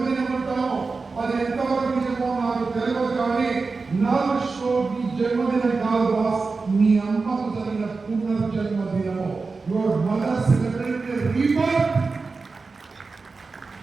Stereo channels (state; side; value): quieter; left; 4.2 dB